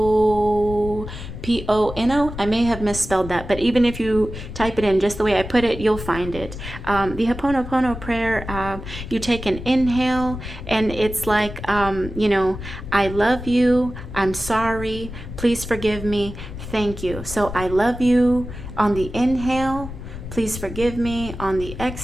I may have misspelled that, but even if you type it in just the way I put it, you'll find it. The Happonopono Prayer, you take an inhale, and it's like, I love you, I'm sorry, please forgive me, thank you. So I love you on the inhale, please forgive me on the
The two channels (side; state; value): left; noise; rumble, 10 dB below the sound